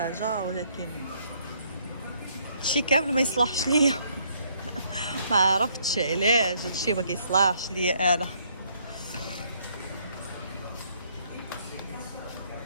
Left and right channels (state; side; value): inverted; both; correlation -0.68